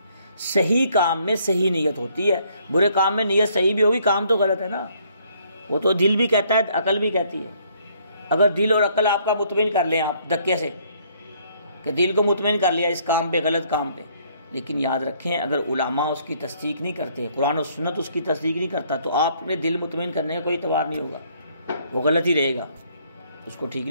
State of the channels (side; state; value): both; inverted; correlation -0.65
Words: صحیح کام میں صحیح نیت ہوتی ہے، برے کام میں نیت صحیح بھی ہوگی، کام تو غلط ہے نا، وہ تو دل بھی کہتا ہے، عقل بھی کہتی ہے۔ اگر دل اور عقل آپ کا مطمئن کر لیں آپ دھکے سے، کہ دل کو مطمئن کر لیا اس کام پہ، غلط کام پہ، لیکن یاد رکھیں اگر علماء اس کی تصدیق نہیں کرتے، قرآن و سنت اس کی تصدیق نہیں کرتا، تو آپ نے دل مطمئن کرنے کا کوئی اعتبار نہیں ہوگا، وہ غلط ہی رہے گا، اس کو ٹھیک